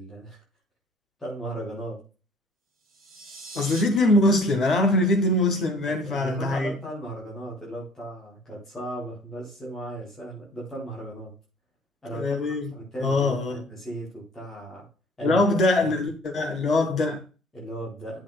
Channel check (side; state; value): both; normal; correlation 0.53